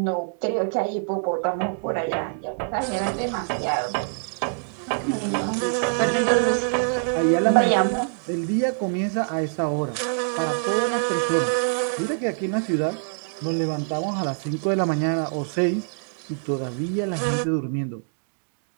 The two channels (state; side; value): silent; left; digital silence